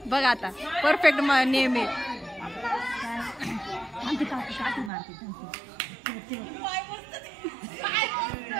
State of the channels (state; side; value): drops out; left; at 4.9 s